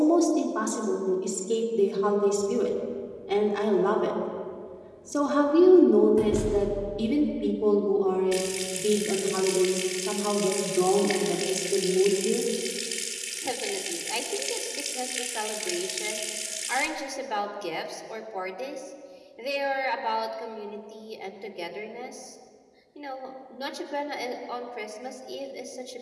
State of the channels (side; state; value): both; identical; correlation 1.00